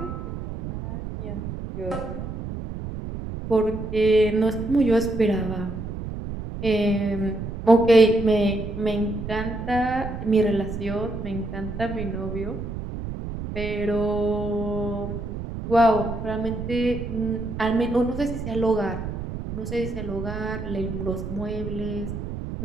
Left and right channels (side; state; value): right; noise; rumble, 7 dB below the sound